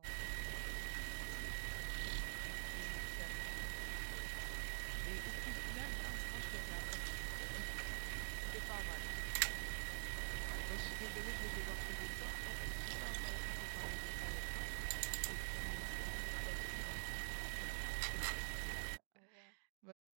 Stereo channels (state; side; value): silent; left; digital silence